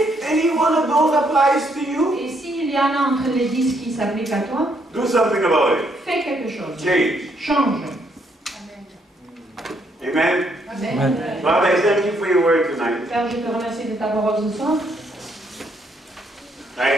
any one of those applies to you, Et s'il y en a entre les 10 qui s'appliquent à toi, do something about it. fais quelque chose. Change. Change. Amen. Amen. Father, I thank you for your word tonight. Père, je te remercie de ta parole ce soir.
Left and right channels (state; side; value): normal; both; correlation 0.72